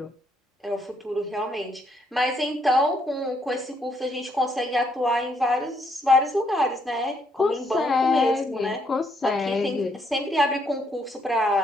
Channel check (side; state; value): both; normal; correlation 0.73